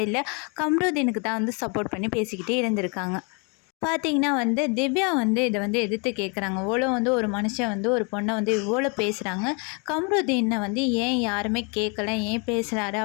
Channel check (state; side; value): quieter; right; 34.2 dB